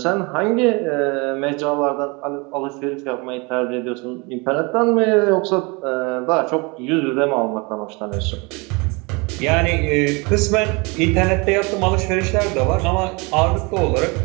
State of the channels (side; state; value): left; quieter; 28.3 dB